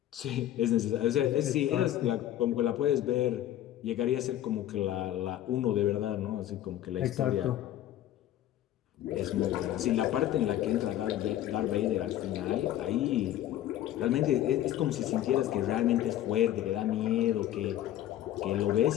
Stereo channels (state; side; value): quieter; right; 12.6 dB